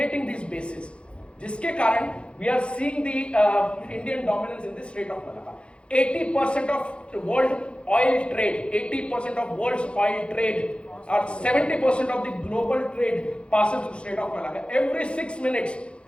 these bases. जिसके कारण we are seeing the Indian dominance in the Strait of Malacca. 80% of world oil trade, 80% of world's oil trade, or 70% of the global trade passes through Strait of Malacca. Every 6 minutes,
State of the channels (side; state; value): right; late; 0.058 ms